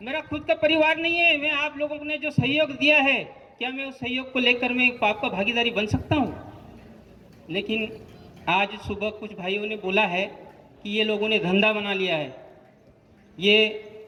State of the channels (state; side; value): identical; both; correlation 1.00